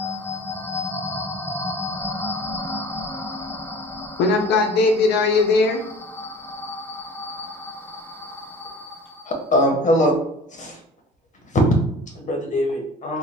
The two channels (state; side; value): normal; both; correlation 0.43